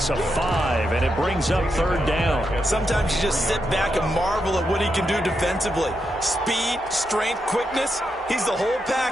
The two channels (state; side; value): normal; both; correlation 0.84